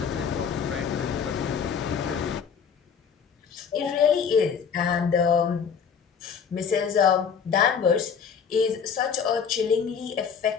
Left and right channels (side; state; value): right; quieter; 6.7 dB